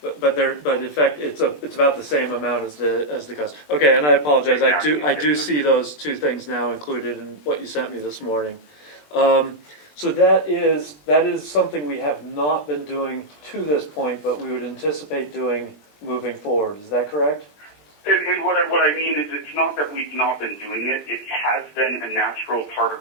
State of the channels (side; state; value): right; late; 20 ms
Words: But in fact, it's about the same amount as the cost. Okay, and I apologize. I do see those two things now included in what you sent me this morning. So that is something we have not been doing to this point, but we would anticipate doing moving forward. Is that correct? And what I mean is, it's not that we've not been doing it. It has been a natural part of